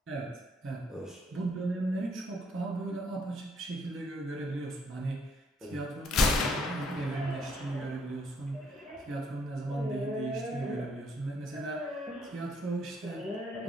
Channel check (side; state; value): both; normal; correlation 0.68